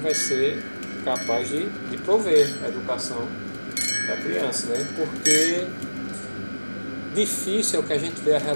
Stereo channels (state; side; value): inverted; both; correlation -1.00